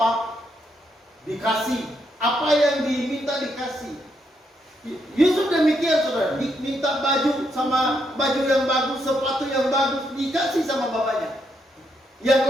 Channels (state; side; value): normal; both; correlation 0.78